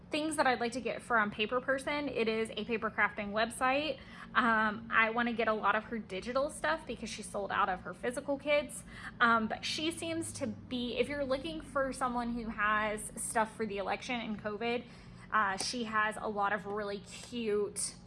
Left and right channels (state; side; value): identical; both; correlation 1.00